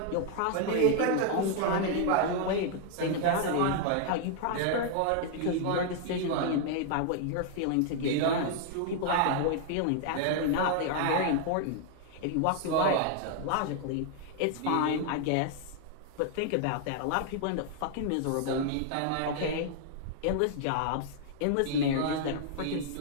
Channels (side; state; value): both; different; correlation 0.00